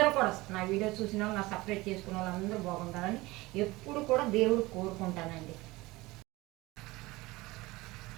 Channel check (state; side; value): quieter; left; 20.8 dB